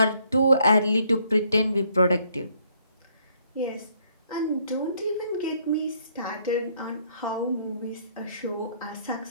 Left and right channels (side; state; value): both; inverted; correlation -0.68